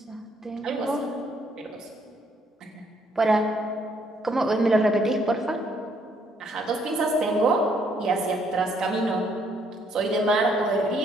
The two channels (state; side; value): normal; both; correlation 0.68